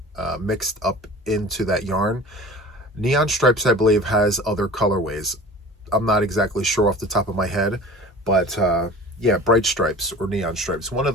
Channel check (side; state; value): both; normal; correlation 0.40